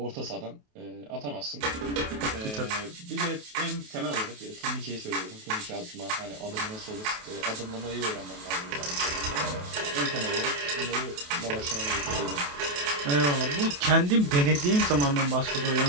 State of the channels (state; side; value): late; left; 28 ms